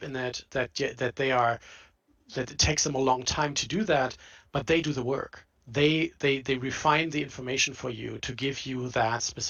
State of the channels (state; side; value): identical; both; correlation 1.00